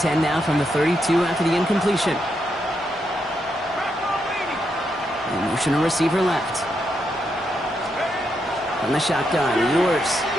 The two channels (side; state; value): both; normal; correlation 0.81